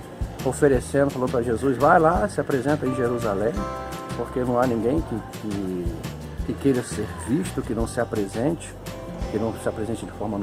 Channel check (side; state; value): both; identical; correlation 1.00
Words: oferecendo, falando para Jesus, vai lá, se apresenta em Jerusalém, porque não há ninguém que queira ser visto, que não se apresente de forma